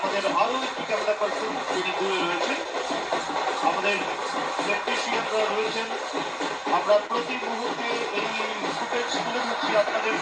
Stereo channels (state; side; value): identical; both; correlation 1.00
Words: আরো একটি ক্যামেরা পার্সন যিনি দূরে রয়েছেন, আমাদের টেকনিশিয়ানরা রয়েছেন। আমরা প্রতি মুহূর্তে এই ফুটেজ তুলে ধরছি আপনাদের